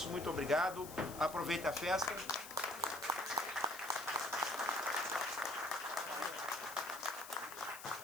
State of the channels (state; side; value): noise; left; hiss, 13 dB below the sound